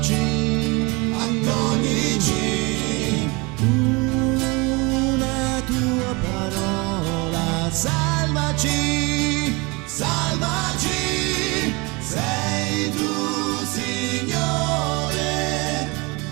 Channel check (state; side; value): quieter; left; 26.9 dB